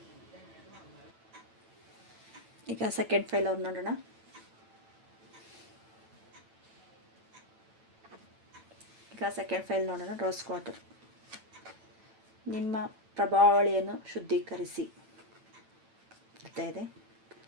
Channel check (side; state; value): left; late; 9.0 ms